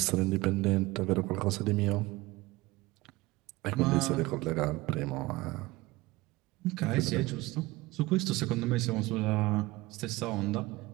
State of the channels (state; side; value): quieter; left; 20.5 dB